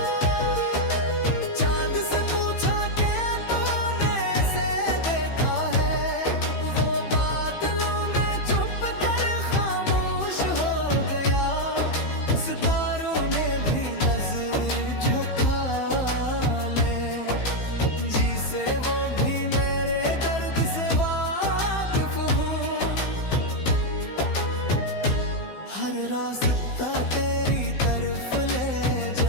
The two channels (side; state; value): right; late; 15 ms